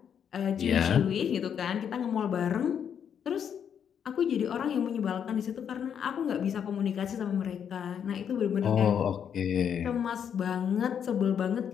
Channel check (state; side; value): quieter; right; 8.2 dB